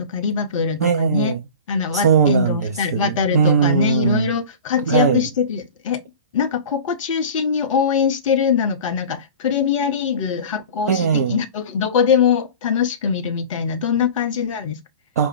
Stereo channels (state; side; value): inverted; both; correlation -0.35